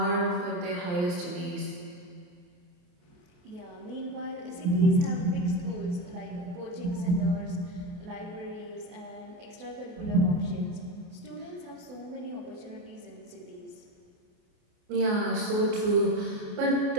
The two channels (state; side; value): late; left; 28 ms